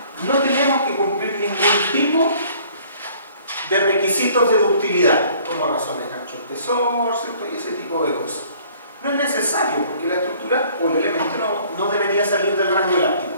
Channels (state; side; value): inverted; both; correlation -0.56